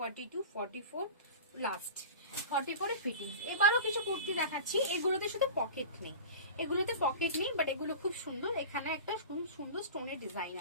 44 লাস্ট 44 ফিটিং। এবারও কিছু কুর্তি দেখাচ্ছি, এগুলোতে শুধু পকেট নেই, এগুলোতে পকেট নেই, বাট এগুলো খুব সুন্দর। এখানে একটা সুন্দর স্টোনের ডিজাইন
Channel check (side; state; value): both; inverted; correlation -0.34